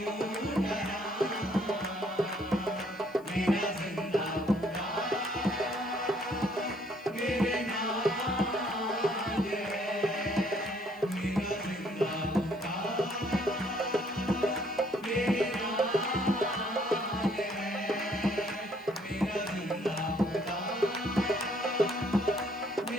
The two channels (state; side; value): noise; left; hiss, 29 dB below the sound